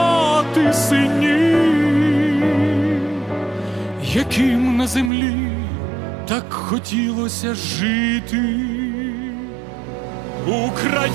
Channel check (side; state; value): left; drops out; at 5.1 s